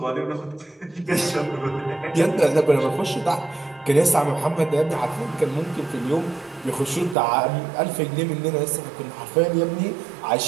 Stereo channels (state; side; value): drops out; left; at 7.2 s